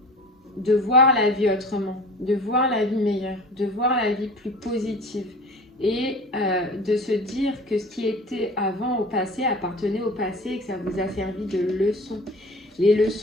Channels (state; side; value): normal; both; correlation 0.41